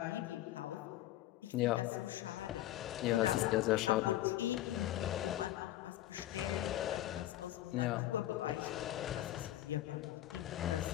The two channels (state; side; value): quieter; right; 14.2 dB